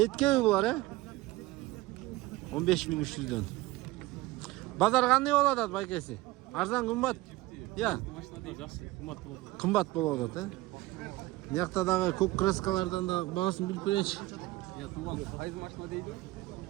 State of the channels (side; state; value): left; quieter; 19.1 dB